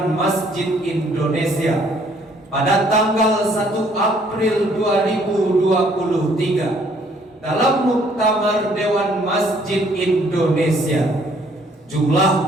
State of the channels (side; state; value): both; normal; correlation 0.63